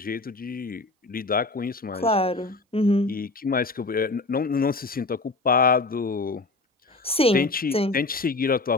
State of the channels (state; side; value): quieter; right; 3.2 dB